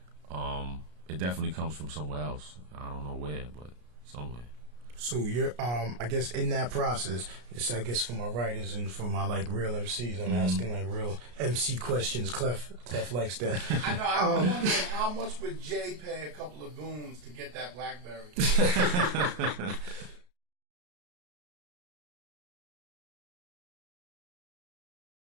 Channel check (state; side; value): late; left; 33 ms